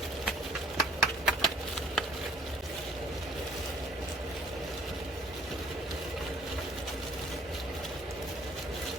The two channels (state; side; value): normal; both; correlation 0.54